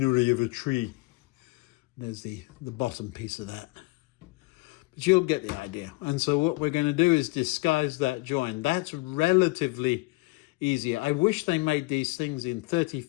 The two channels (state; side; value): quieter; right; 24.5 dB